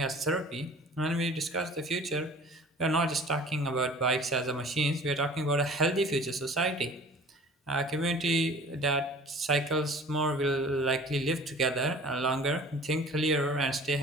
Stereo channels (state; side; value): normal; both; correlation 0.46